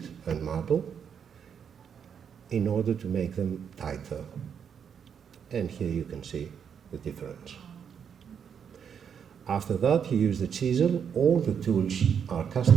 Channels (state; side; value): quieter; left; 7.5 dB